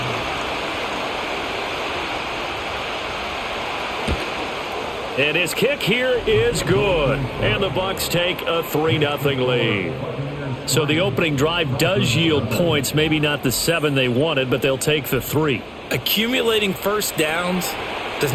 And his kick here is good. And the Bucs take a 3-0 lead. So the opening drive does yield points, maybe not the 7 they wanted, but they'll take the 3. Accumulating first downs does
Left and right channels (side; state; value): both; identical; correlation 1.00